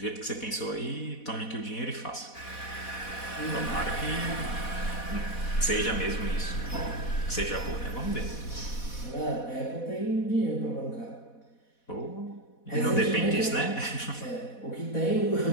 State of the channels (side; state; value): right; late; 4.1 ms